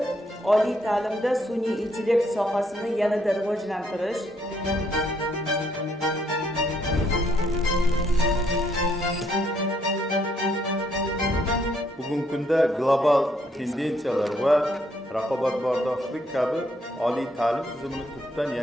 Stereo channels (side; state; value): both; normal; correlation 0.71